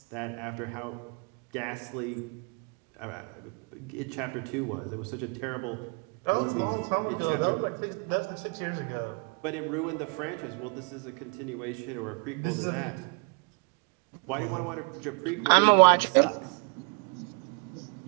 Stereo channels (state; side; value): quieter; left; 35.9 dB